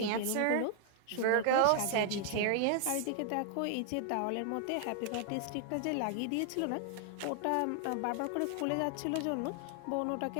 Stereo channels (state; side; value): different; both; correlation 0.00